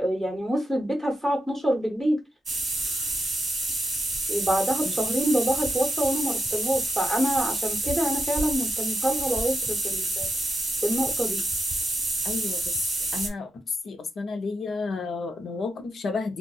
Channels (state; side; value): normal; both; correlation 0.84